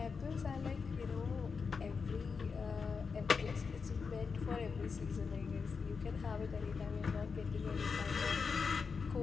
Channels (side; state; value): right; quieter; 5.3 dB